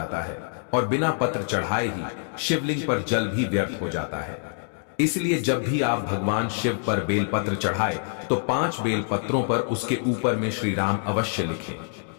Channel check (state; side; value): silent; right; digital silence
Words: है और बिना पत्र चढ़ाए ही शिवलिंग पर जल भी व्यर्थ हो जाता है। इसलिए जब भी आप भगवान शिव पर बेलपत्र चढ़ाए तो 5 बेलपत्रों पर उसके ऊपर में श्री राम अवश्य लिखें।